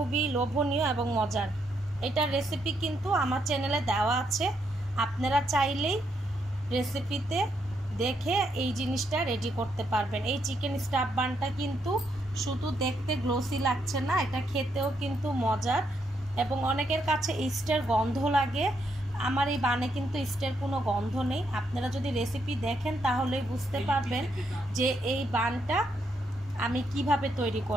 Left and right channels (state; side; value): normal; both; correlation 0.77